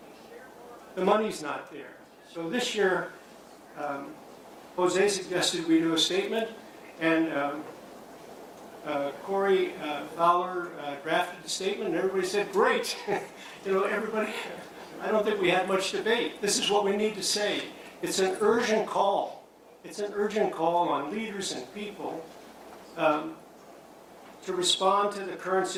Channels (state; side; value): identical; both; correlation 1.00